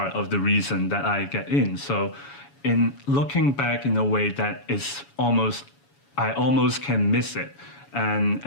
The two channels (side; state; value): right; late; 7.1 ms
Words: of the reason that I get in. So in looking back in a way that I almost can miss it.